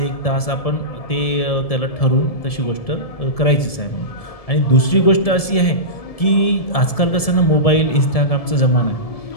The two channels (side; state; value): right; late; 1.7 ms